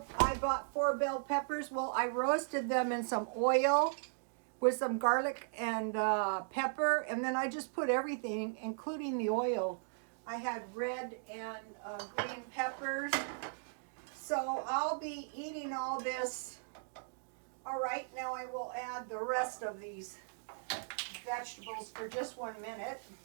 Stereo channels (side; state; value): left; silent; digital silence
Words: bought 4 bell peppers. Well, I roasted them in some oil with some garlic and pepper, and then I just put everything, including the oil. I had red and green peppers. So I'll be eating all this. All right, now I will add the rest of these vegetables for just 1 minute.